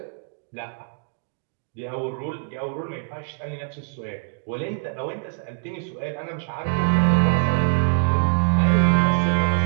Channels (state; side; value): silent; left; digital silence